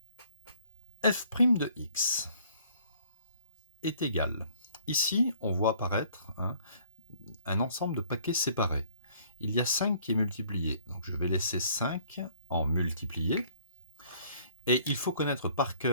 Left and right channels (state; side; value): inverted; both; correlation -0.58